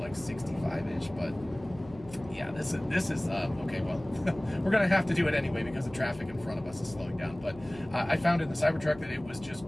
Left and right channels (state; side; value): noise; left; hum, 19 dB below the sound